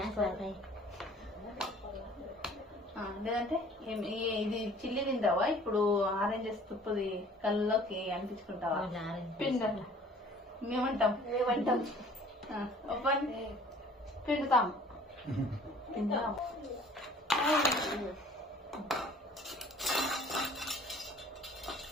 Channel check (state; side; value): normal; both; correlation 0.51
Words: లేదంటే ఇది చిల్లి తింటావా? ఇప్పుడు ఆరెంజెస్ తుప్పుది కళ్ళలోకి అనిపించుకుంటావా? పిండి మేమంటాం పిండుతాం.